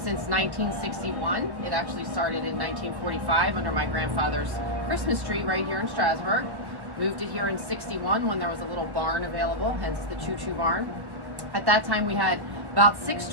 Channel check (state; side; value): late; left; 1.2 ms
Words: 1961. It actually started in 1945 under my grandfather's Christmas tree right here in Strasburg. Moved it here in 61 when there was a little barn available, hence the Choo Choo Barn. At that time, we had about 6